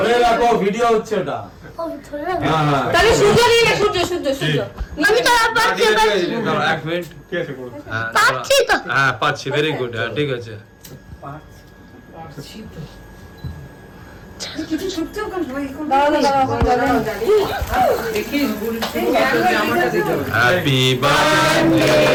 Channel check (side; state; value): both; identical; correlation 1.00